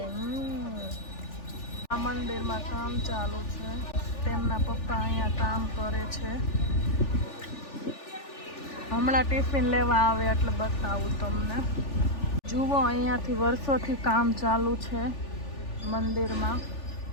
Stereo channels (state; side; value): late; right; 3.4 ms